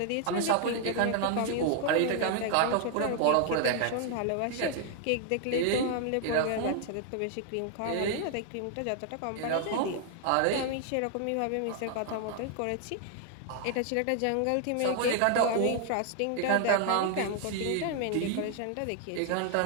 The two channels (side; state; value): both; different; correlation 0.00